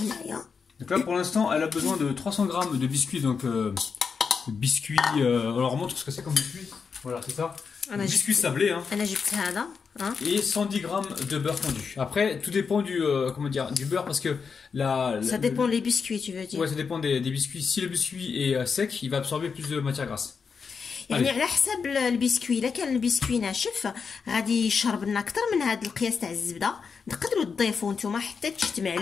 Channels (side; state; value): right; quieter; 5.7 dB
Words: Donc là pour l'instant elle a besoin de 300 grammes de biscuits, donc biscuits, alors on montre ce que c'est comme biscuit, voilà c'est ça, biscuits sablés hein. Et 110 grammes de beurre fondu. Après tout dépend du, comment dire, du beurre parce que ça dépend des biscuits tu veux dire. Ouais ça dépend des biscuits, si le biscuit est sec il va absorber plus de matière grasse. يعني على حسب البسكوي، الا كان البسكوي ناشف غادي يشرب لنا اكثر من هذا القياس تاع الزبده، تقدروا تضيفوا نتوما حتى تجتمع